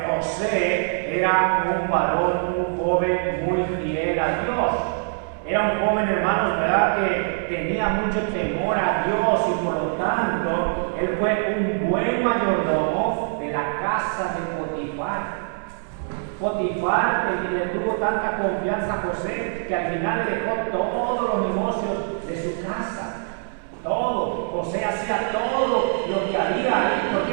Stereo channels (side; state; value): left; silent; 63 dB below the other